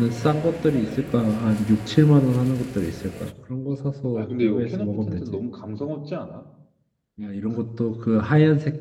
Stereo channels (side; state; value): both; identical; correlation 1.00